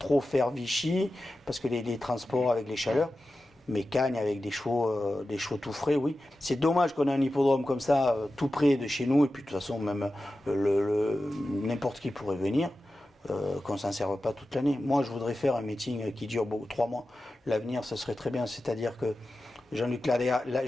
faire Vichy, parce que les transports avec les chaleurs. Mais Cagnes avec des chevaux tout frais, oui. C'est dommage qu'on ait un hippodrome comme ça, tout près de chez nous, et puis de toute façon, même n'importe qui pourrait venir, qu'on ne s'en serve pas toute l'année. Moi, je voudrais faire un meeting qui dure 3 mois. L'avenir, ce serait très bien. C'est-à-dire que Jean-Luc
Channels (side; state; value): both; normal; correlation 0.93